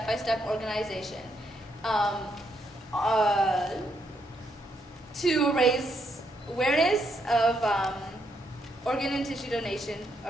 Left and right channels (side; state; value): both; normal; correlation 0.76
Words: organization to raise awareness of organ and tissue donation